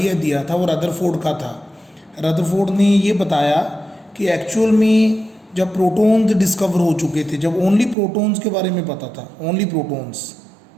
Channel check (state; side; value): drops out; left; at 8.0 s